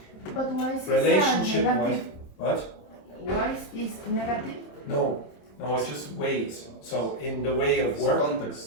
But why is Relationship wise, negative? what? Why is this negative? No, it's just ways. So in the way of work,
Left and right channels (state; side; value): late; right; 27 ms